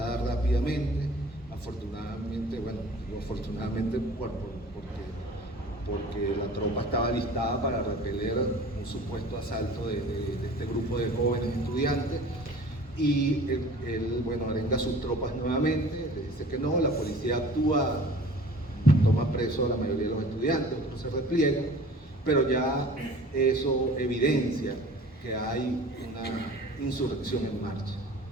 rápidamente, afortunadamente, bueno, digo afortunadamente porque porque la tropa estaba listada para repeler un supuesto asalto de este grupo de jóvenes estudiantes. Y él, bueno, arenga a sus tropas nuevamente, le dice que no, la policía actúa, toma preso a la mayoría de los estudiantes, otros se repliegan, pero ya eso evidencia que hay una insurrección en marcha.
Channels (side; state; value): both; normal; correlation 0.45